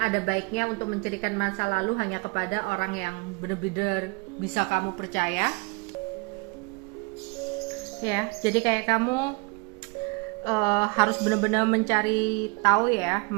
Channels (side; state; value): left; quieter; 29.5 dB